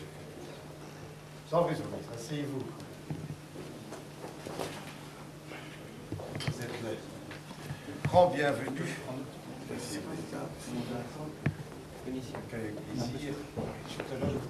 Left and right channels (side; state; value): both; identical; correlation 1.00